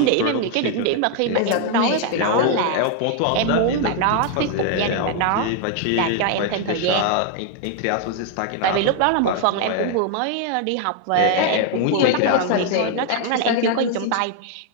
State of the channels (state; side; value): different; both; correlation 0.00